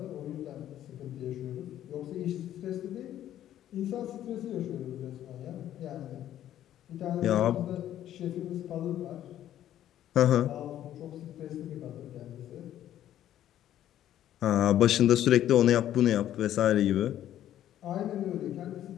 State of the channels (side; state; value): right; quieter; 11.9 dB